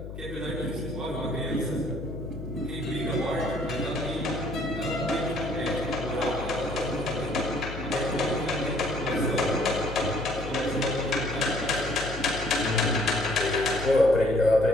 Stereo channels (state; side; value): noise; left; hum, 10 dB below the sound